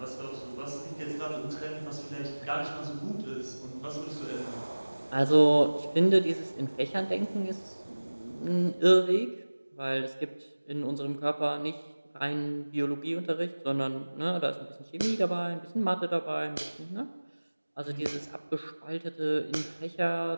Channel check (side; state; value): both; inverted; correlation -1.00